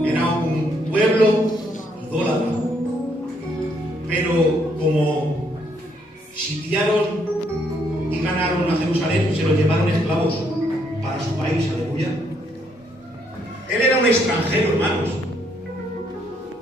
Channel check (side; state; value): both; normal; correlation 0.71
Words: Era un pueblo idólatra. Pero como sitiaron y ganaron a Jerusalén, se lo llevaron esclavos para su país, aleluya. Él era un extranjero, hermanos,